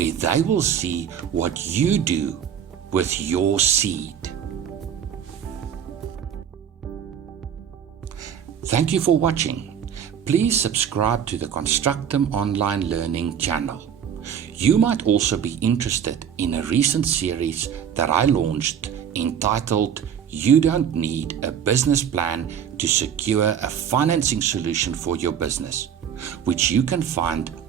they will see what you do with your seed. Thank you for watching. Please subscribe to the Constructum Online Learning channel. You might also be interested in a recent series that I launched entitled You Don't Need a Business Plan to Secure a Financing Solution for Your Business, which you can find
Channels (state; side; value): quieter; left; 8.5 dB